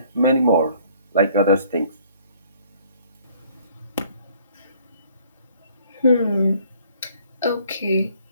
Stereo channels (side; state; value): both; inverted; correlation -0.59